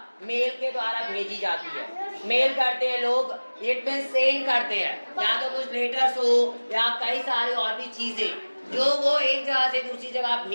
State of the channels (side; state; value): both; inverted; correlation -1.00